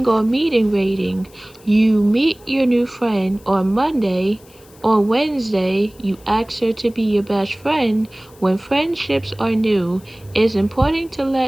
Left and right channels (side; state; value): left; noise; hiss, 27 dB below the sound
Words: meeting rating. You meet your new friend on Monday. On Wednesday, you ask her to be your best friend. When friendships are new, it's important to